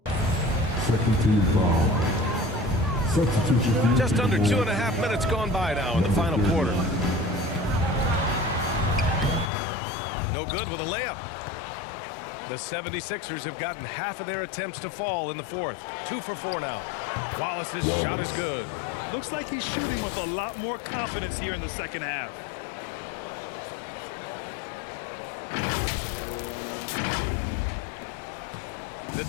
Second team foul. Substitution. Just under 2.5 minutes gone by now in the final quarter. No good with a layup. The 76ers have gotten half of their attempts to fall in the fourth. 2 for 4 now. Wallace's shot is good. Looks like he's shooting with a lot more confidence here in the second half. The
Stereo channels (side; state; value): right; drops out; at 9.5 s